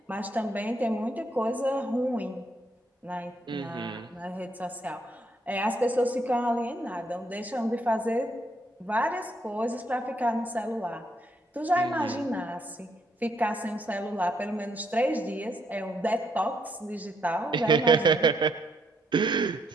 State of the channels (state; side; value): normal; both; correlation 0.74